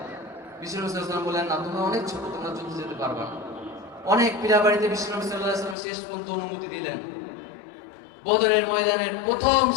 বিশ্বনবী সাল্লাল্লাহু আলাইহি ওয়াসাল্লাম বললেন, না, তোমরা অনেক ছোট, তোমরা যুদ্ধে যেতে পারবে না। অনেক পীড়াবাড়িতে বিশ্বনবী সাল্লাল্লাহু আলাইহি ওয়াসাল্লাম শেষ পর্যন্ত অনুমতি দিলেন। বদরের ময়দানের প্রথম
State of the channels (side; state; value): right; drops out; at 5.8 s